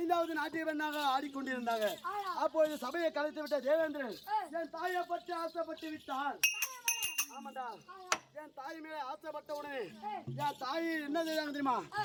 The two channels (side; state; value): both; identical; correlation 1.00